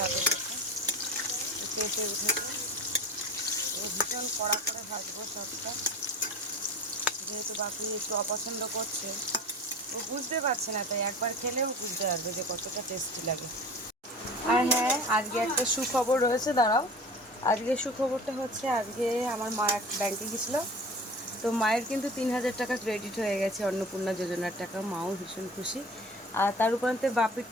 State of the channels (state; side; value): normal; both; correlation 0.38